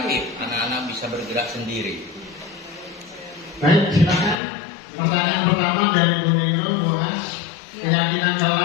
anak-anak bisa bergerak sendiri. Baik, silakan. Pertanyaan pertama dari Bu Nero, Muras. Keyakinan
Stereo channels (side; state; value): right; drops out; at 4.4 s